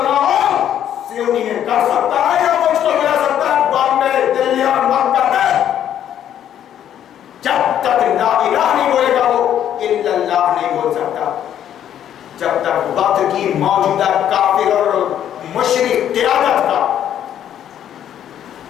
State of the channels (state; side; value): quieter; right; 10.3 dB